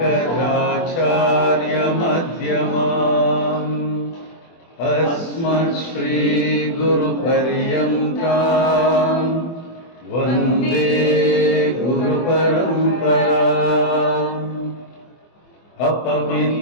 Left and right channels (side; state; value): right; late; 24 ms